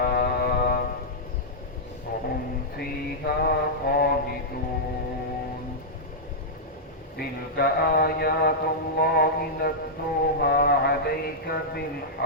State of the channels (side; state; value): both; normal; correlation -0.09